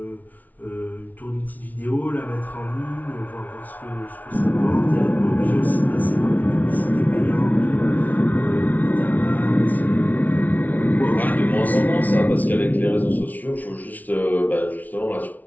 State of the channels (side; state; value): right; late; 0.077 ms